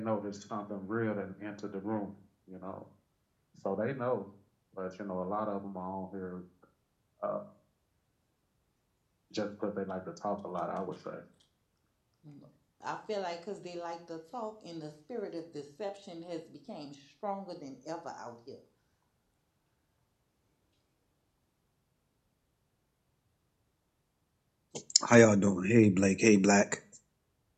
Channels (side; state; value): both; identical; correlation 1.00